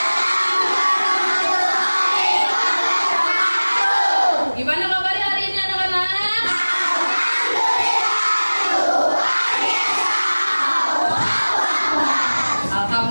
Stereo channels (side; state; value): both; inverted; correlation -1.00